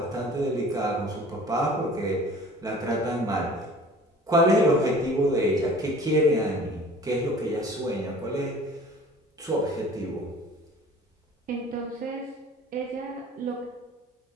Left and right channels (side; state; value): both; normal; correlation 0.46